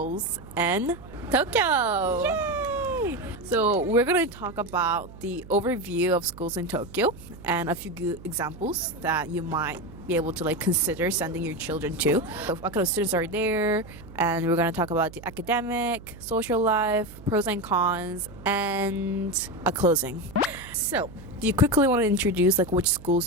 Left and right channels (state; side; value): noise; right; hum, 17 dB below the sound